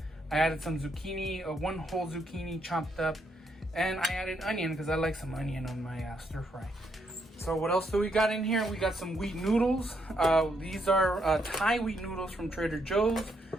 I added some zucchini, one whole zucchini chopped up, and I added onion because I like some onion on my stir fry. So what else do we got in here? We got some wheat noodles. These are Thai wheat noodles from Trader Joe's,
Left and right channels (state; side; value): normal; both; correlation 0.76